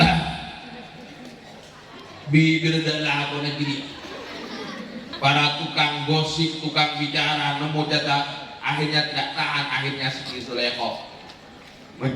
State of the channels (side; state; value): both; identical; correlation 1.00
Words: bibirdalah bonan diri. Para tukang gosip, tukang bicara, nemu data, akhirnya tidak tahan. Akhirnya Siti Zulaikha